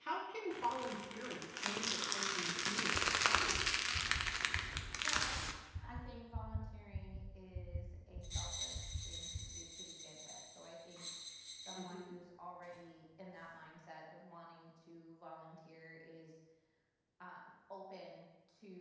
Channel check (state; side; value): identical; both; correlation 1.00